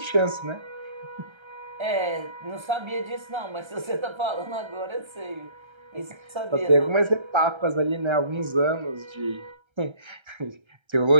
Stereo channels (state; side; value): late; left; 1.3 ms